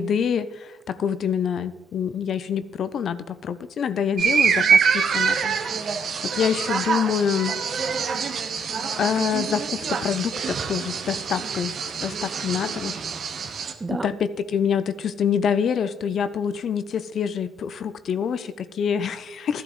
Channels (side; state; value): both; normal; correlation 0.69